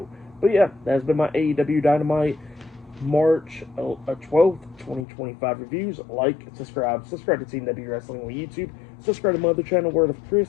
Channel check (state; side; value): drops out; right; at 5.1 s